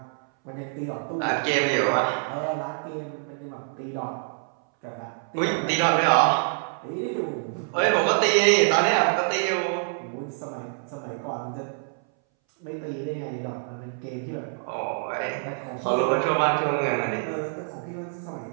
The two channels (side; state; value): left; silent; 61 dB below the other